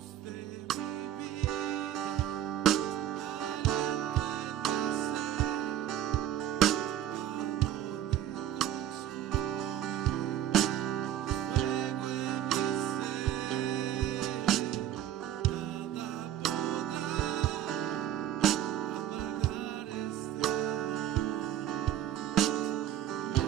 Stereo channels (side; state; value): left; quieter; 11.2 dB